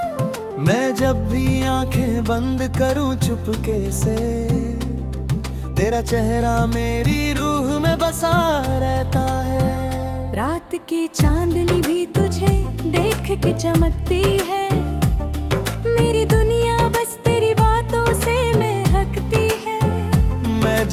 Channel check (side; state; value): both; identical; correlation 1.00